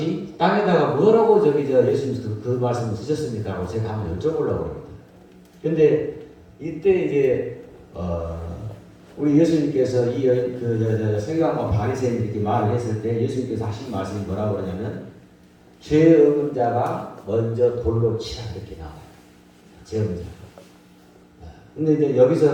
땅에다가 뭐라고 예수님 그 말씀을 쓰셨습니까? 라고 제가 한번 여쭤보려고 합니다. 근데 이때 이제 우리 예수님께서 이 서기관과 바리새인 이렇게 말을 했을 때 예수님께서 하신 말씀이 뭐라고 그러냐면 죄 없는 자가 먼저 돌로 치라 이렇게 나와요. 죄 없는 자가. 근데 이제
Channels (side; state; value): both; identical; correlation 1.00